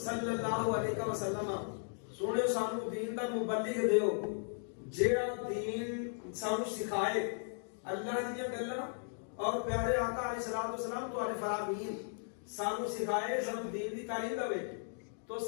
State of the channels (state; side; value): silent; right; digital silence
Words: صلی اللہ علیہ وسلم, سونے سانو دین دا مبلغ دیو جیڑا دین سانو سکھائے, اللہ دی گلاں اور پیارے آقا علیہ الصلوۃ والسلام تو علیہ فرامین سانو سکھائے, سانو دین دی تعلیم دے. تو